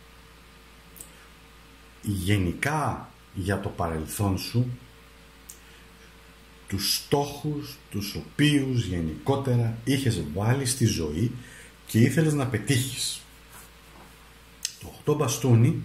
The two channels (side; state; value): both; identical; correlation 1.00